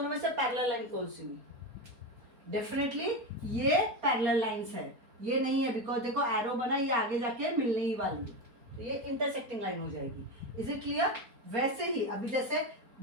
में से पैरेलल लाइन कौन सी हुई? डेफिनेटली ये पैरेलल लाइंस है, ये नहीं है, बिकॉज देखो एरो बना, ये आगे जाके मिलने ही वाली है, तो ये इंटरसेक्टिंग लाइन हो जाएगी. Is it clear? वैसे ही अभी जैसे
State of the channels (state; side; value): late; left; 4.3 ms